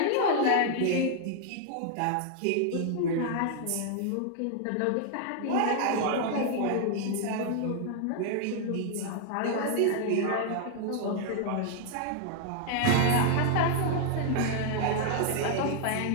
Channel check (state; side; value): different; both; correlation 0.00